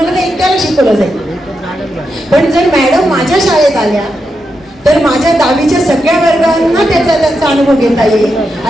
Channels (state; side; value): normal; both; correlation 0.86